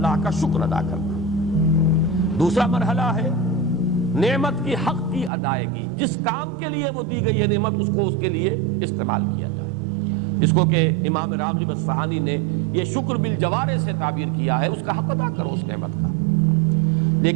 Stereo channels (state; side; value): drops out; left; at 5.3 s